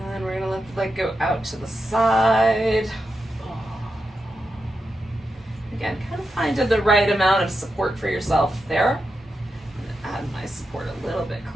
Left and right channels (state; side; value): normal; both; correlation 0.88